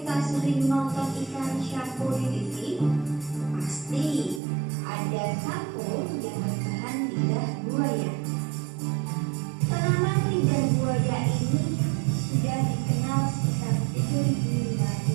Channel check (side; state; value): left; drops out; at 4.4 s